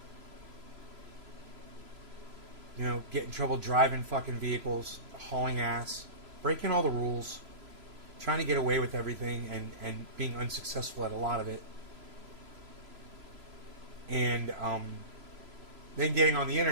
You know, get in trouble driving fucking vehicles, hauling ass, breaking all the rules, trying to get away with everything and being unsuccessful at a lot of it. And then getting on the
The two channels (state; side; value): late; left; 3.0 ms